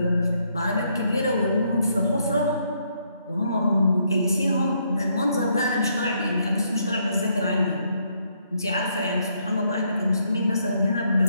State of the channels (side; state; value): both; inverted; correlation -0.73